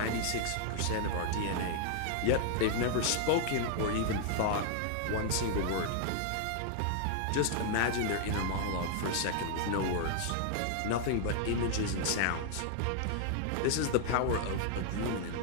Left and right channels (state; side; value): different; both; correlation 0.00